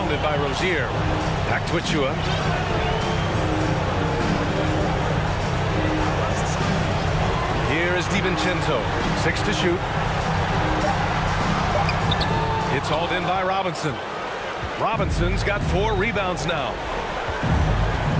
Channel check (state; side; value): identical; both; correlation 1.00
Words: by Rozier. Back to Achua. Here is DiVincenzo. 6 to shoot. It's hauled in by Robinson. Robinson's got 4 rebounds now.